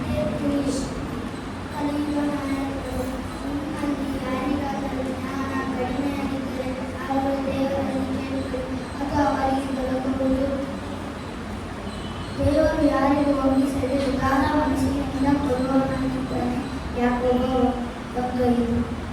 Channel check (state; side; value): identical; both; correlation 1.00